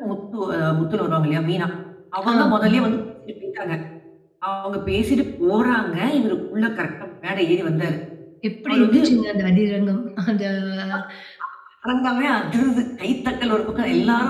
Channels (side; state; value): both; identical; correlation 1.00